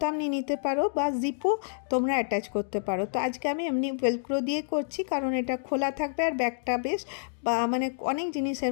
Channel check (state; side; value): silent; right; digital silence